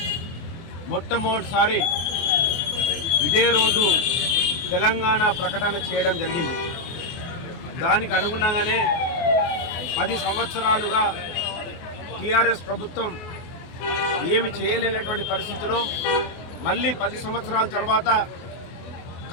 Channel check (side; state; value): right; late; 24 ms